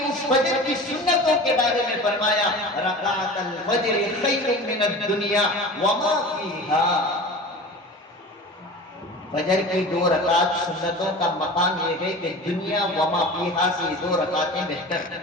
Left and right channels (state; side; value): normal; both; correlation 0.36